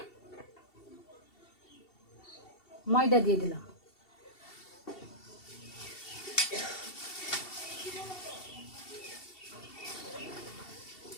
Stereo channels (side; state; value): right; late; 2.7 ms